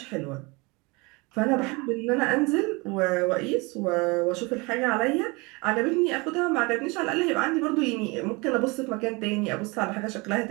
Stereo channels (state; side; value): quieter; left; 26.6 dB